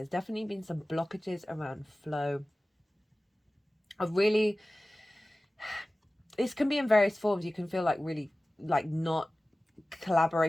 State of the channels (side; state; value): both; normal; correlation 0.97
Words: definitely been some blockages around flow. This can be in various forms. You can feel like really like not